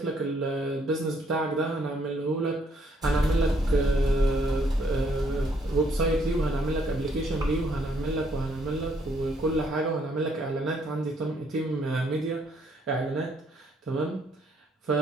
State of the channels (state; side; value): normal; both; correlation 0.69